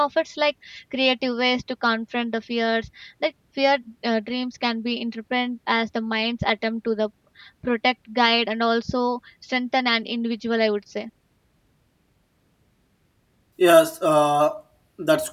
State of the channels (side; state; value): both; identical; correlation 1.00